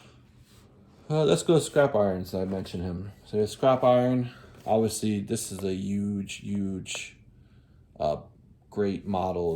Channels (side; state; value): both; identical; correlation 1.00